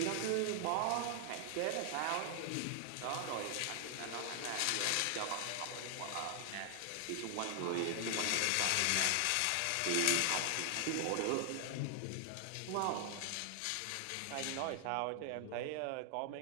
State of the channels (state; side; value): different; both; correlation 0.00